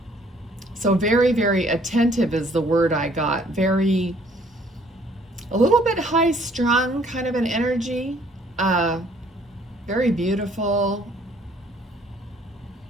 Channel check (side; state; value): both; normal; correlation 0.61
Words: so very, very attentive is the word I got. A little bit high strung kind of an energy. Very beautiful.